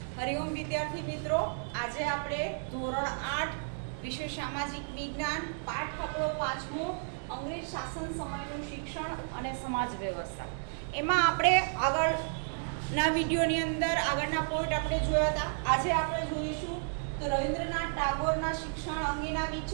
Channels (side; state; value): left; silent; digital silence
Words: હરિઓમ વિદ્યાર્થી મિત્રો, આજે આપણે ધોરણ 8 વિષય સામાજિક વિજ્ઞાન પાઠ આપણો 5મો અંગ્રેજ શાસન સમયનું શિક્ષણ અને સમાજ વ્યવસ્થા એમાં આપણે આગળના વિડીયોની અંદર આગળના પોઈન્ટ આપણે જોયા હતા. આજે આપણે જોઈશું તો રવિન્દ્રનાથ ટાગોરના શિક્ષણ અંગેના